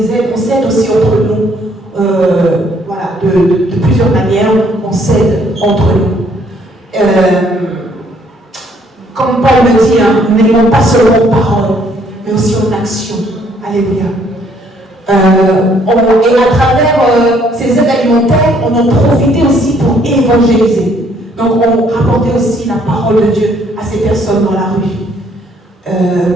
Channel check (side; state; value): both; normal; correlation 0.65